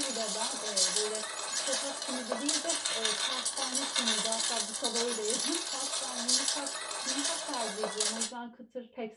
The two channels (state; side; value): identical; both; correlation 1.00